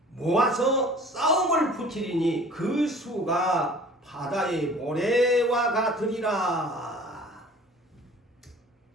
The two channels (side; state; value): both; normal; correlation 0.47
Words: 모아서 싸움을 붙이리니 그 수가 바다의 모래와 같으리라.